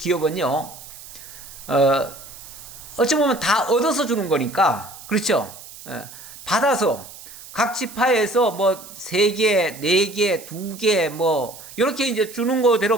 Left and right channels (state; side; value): noise; right; hiss, 16 dB below the sound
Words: 어찌 보면 다 얻어서 주는 거니까, 그렇죠? 받아서 각 지파에서 뭐 3개, 4개, 2개 뭐 이렇게 이제 주는